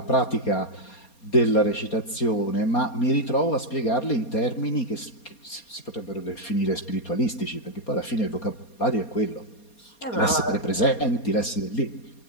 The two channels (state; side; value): late; right; 4.2 ms